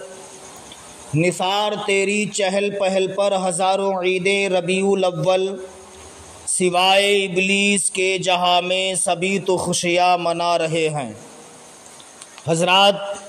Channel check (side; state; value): both; identical; correlation 1.00